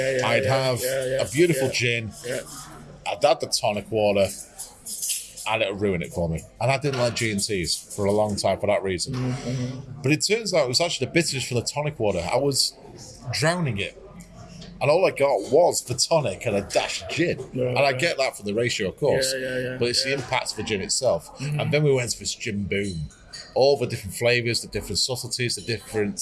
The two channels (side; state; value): both; identical; correlation 1.00